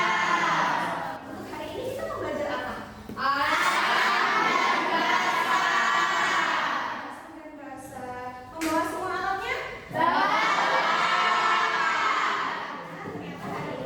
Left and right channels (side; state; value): both; identical; correlation 1.00